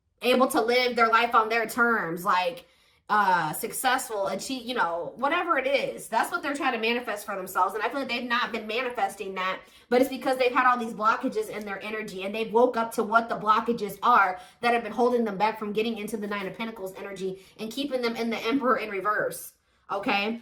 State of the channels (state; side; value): identical; both; correlation 1.00